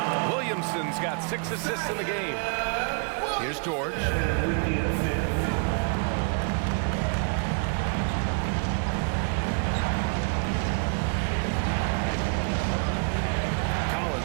Williamson's got 6 assists in the game. Here's George. With the assist.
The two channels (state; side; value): quieter; left; 39.8 dB